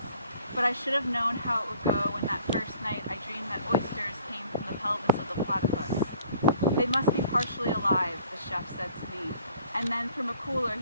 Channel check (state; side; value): inverted; both; correlation -0.55